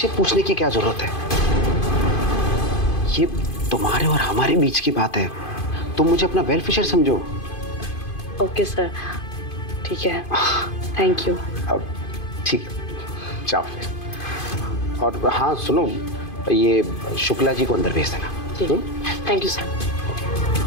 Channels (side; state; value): right; late; 2.5 ms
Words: से पूछने की क्या जरूरत है? ये तुम्हारे और हमारे बीच की बात है, तुम मुझे अपना वेल विशर समझो। ओके सर, ठीक है, थैंक यू। अब ठीक है, जाओ फिर। और हाँ सुनो, ये शुक्ला जी को अंदर भेज देना। ठीक है, थैंक यू सर।